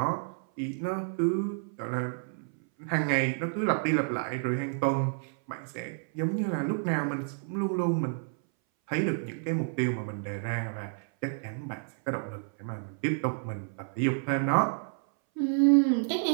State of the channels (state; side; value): silent; left; 58 dB below the other